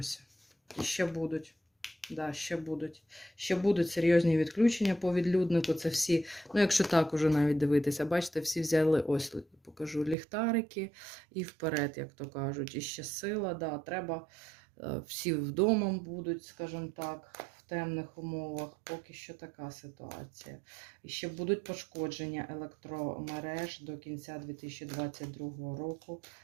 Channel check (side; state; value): left; drops out; at 10.2 s